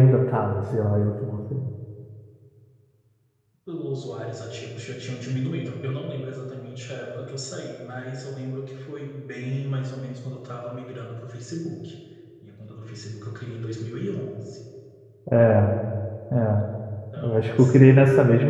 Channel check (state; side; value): identical; both; correlation 1.00